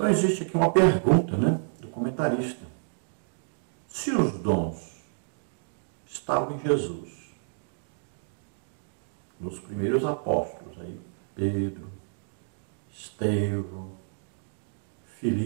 existe aqui uma pergunta, do comentarista. Se os dons estavam em Jesus, nos primeiros apóstolos, aí, Pedro, Estevão,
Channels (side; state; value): left; silent; digital silence